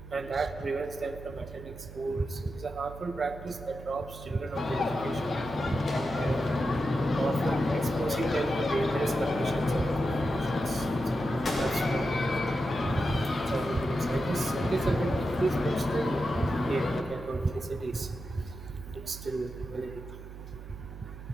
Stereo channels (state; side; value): noise; right; hum, 14 dB below the sound